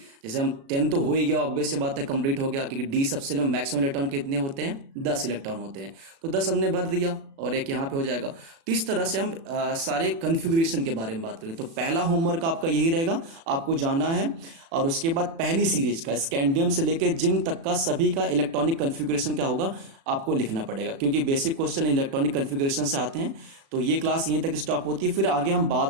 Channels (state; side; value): late; left; 36 ms